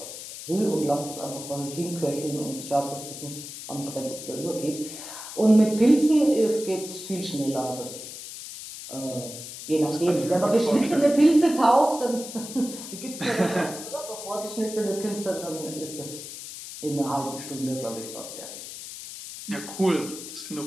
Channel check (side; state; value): left; noise; hiss, 11 dB below the sound